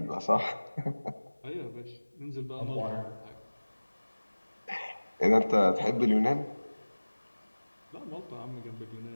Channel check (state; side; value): inverted; both; correlation -1.00